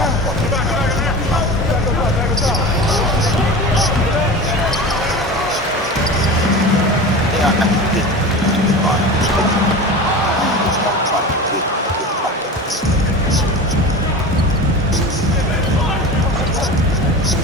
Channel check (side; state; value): both; normal; correlation 0.31